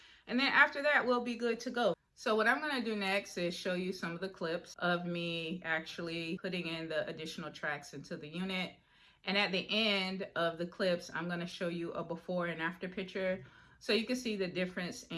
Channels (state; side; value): identical; both; correlation 1.00